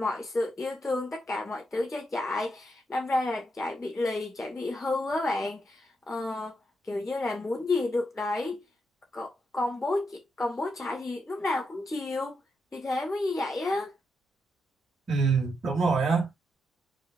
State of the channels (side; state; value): both; normal; correlation 0.82